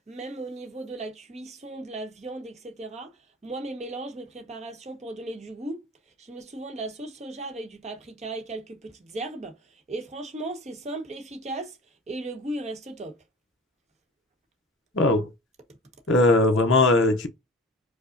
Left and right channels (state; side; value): normal; both; correlation 0.37